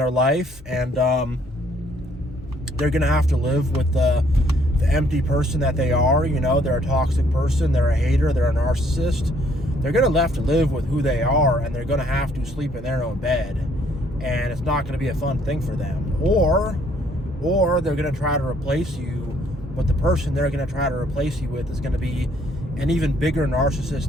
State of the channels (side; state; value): both; normal; correlation 0.65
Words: life, and they're going to have to live with the empty person that they are. They're a toxic person, they're a hater, they're a narcissist. They're going to have to live with who they are, and they're going to have to sleep in their own bed, and it's not going to be a fun thing for them. Or they're going to try to replace you, but the person they're going to try to replace you with is going to be an even bigger